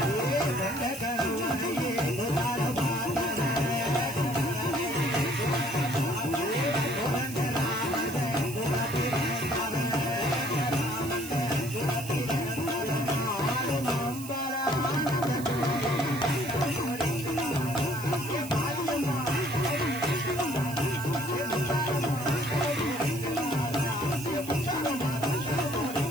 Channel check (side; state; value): right; noise; hiss, 13 dB below the sound